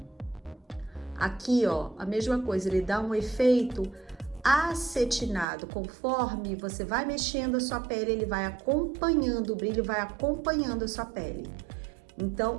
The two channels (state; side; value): drops out; left; at 5.5 s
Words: Aqui, ó, a mesma coisa, ele dá um efeito acetinado. Conforme você vai mexendo a sua pele, ele vai acompanhando, o brilho vai acompanhando a sua pele. Então,